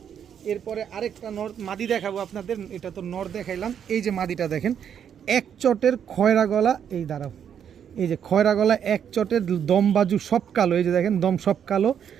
এরপরে আরেকটা নর মাদি দেখাবো আপনাদের, এটা তো নর দেখাইলাম। এই যে মাদিটা দেখেন, এক চটের খয়রা গলা, এই দাঁড়াও, এই যে খয়রা গলা, এক চটের দম বাজু সব কালো, এই যে দেখেন দম সব কালো,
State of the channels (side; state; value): left; quieter; 8.5 dB